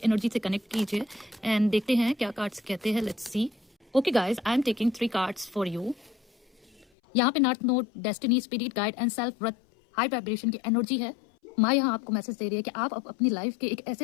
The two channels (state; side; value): drops out; right; at 6.9 s